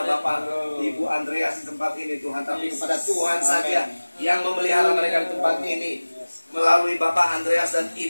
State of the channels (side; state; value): both; inverted; correlation -1.00